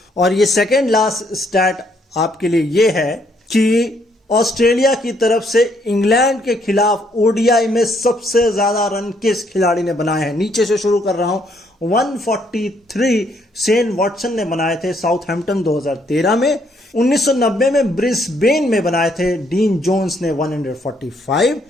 और ये सेकंड लास्ट स्टैट आपके लिए ये है कि ऑस्ट्रेलिया की तरफ से इंग्लैंड के खिलाफ ओडीआई में सबसे ज्यादा रन किस खिलाड़ी ने बनाए हैं। नीचे से शुरू कर रहा हूं। 143 शेन वॉटसन ने बनाए थे साउथहैम्पटन 2013 में। 1990 में ब्रिस्बेन में बनाए थे डीन जोन्स ने 145।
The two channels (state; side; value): normal; both; correlation 0.70